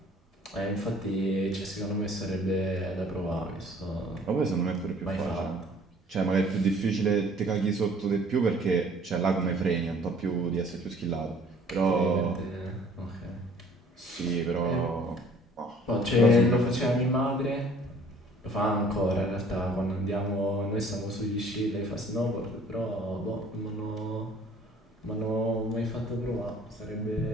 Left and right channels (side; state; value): both; normal; correlation 0.54